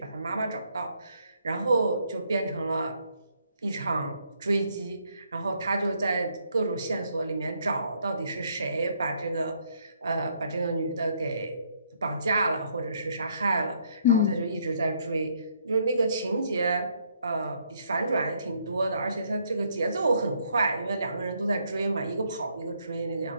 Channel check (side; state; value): both; inverted; correlation -0.71